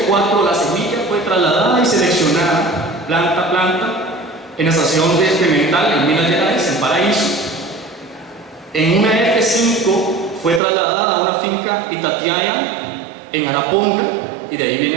F4, la semilla fue trasladada y seleccionada planta a planta en la estación experimental en Minas Gerais, en Paraíso. En una F5 fue trasladada a una finca Itatiaia en Araponga, y de ahí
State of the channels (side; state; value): left; drops out; at 10.6 s